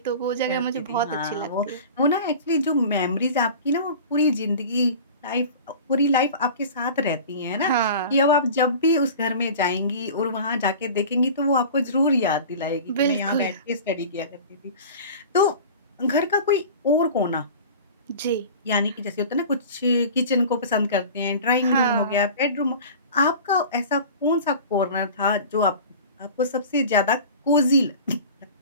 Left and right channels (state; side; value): inverted; both; correlation -0.38